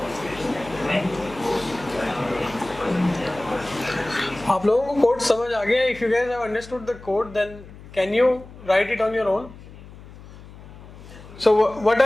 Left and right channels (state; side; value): noise; left; hum, 18 dB below the sound